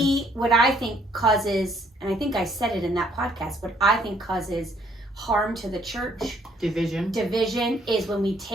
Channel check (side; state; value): both; normal; correlation 0.66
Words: what I think causes, and I think I said it in that podcast, what I think causes harm to the church, division is when we